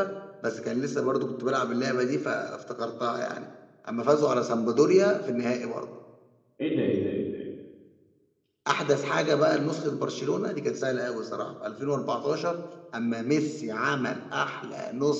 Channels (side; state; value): both; identical; correlation 1.00